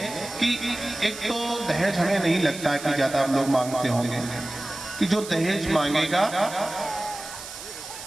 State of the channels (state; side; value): noise; right; hiss, 12 dB below the sound